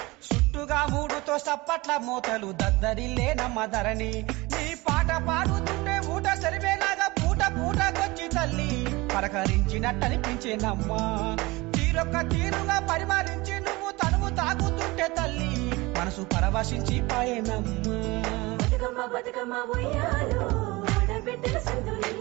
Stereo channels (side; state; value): left; quieter; 22.5 dB